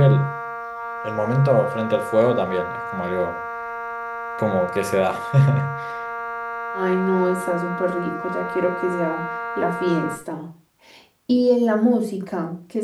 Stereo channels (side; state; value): both; identical; correlation 1.00